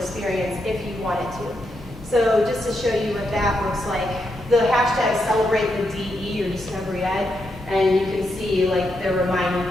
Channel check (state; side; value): normal; both; correlation 0.82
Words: if you wanted to. So just to show you what that looks like, the hashtag celebrate the DE or Discovery Ed, and you can see like they're reminding